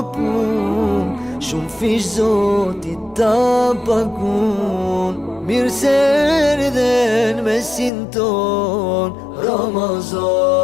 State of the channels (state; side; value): drops out; right; at 7.9 s